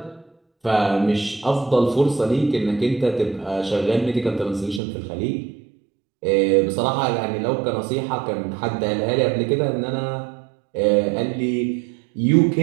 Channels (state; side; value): drops out; left; at 4.8 s